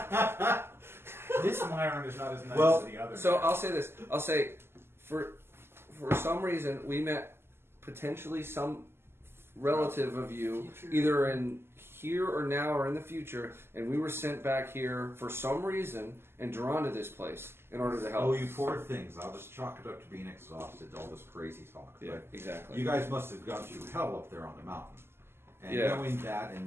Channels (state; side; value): late; left; 0.12 ms